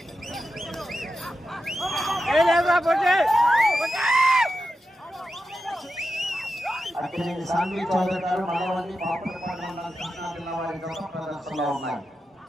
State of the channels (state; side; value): normal; both; correlation 0.90